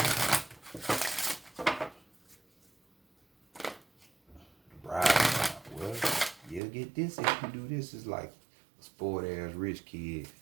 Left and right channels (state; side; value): drops out; left; at 6.6 s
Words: Bribe. Well, you'll get this if you do this. It's like a spoiled ass rich kid